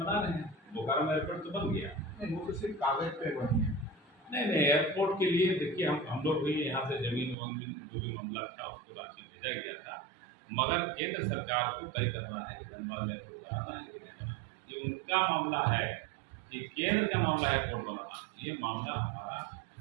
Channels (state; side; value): drops out; left; at 7.4 s